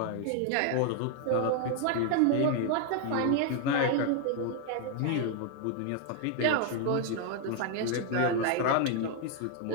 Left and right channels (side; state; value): both; different; correlation 0.00